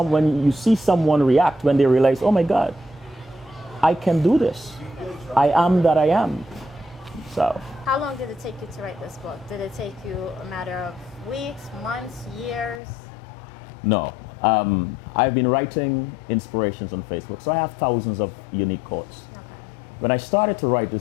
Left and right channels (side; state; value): right; drops out; at 12.8 s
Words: you see someone react when they realize, oh my God, I can do this. I am that I am. So. How long did it take you to write this book? Did it take you a matter of weeks, months, years? No, I've been writing inspirations on Facebook, so I have thousands of unique quotes. When I started to write